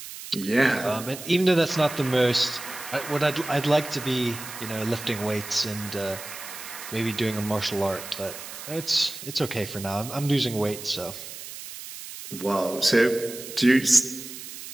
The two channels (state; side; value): noise; right; hiss, 11 dB below the sound